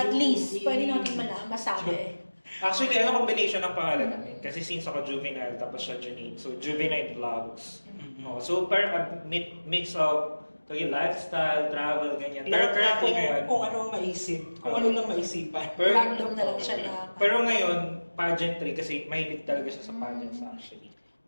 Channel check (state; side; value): inverted; both; correlation -1.00